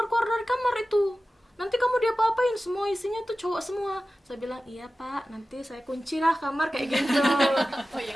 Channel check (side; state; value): both; normal; correlation 0.95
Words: dari kamar itu, nanti kamu diapa-apain, semua isinya tuh cowok semua. Saya bilang iya Pak, nanti saya kunci lah kamar kayak gitu. Oh iya,